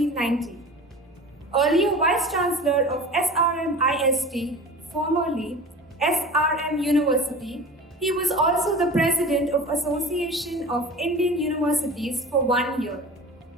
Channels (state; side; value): normal; both; correlation 0.37